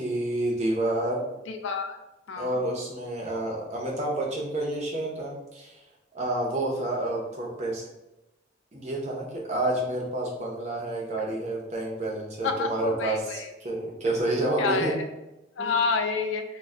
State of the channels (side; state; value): both; normal; correlation 0.28